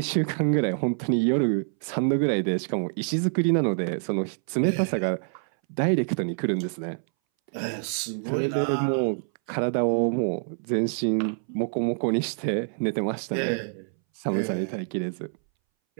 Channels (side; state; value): left; silent; 61 dB below the other